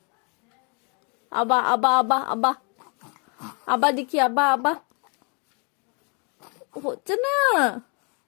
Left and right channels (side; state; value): right; quieter; 34.9 dB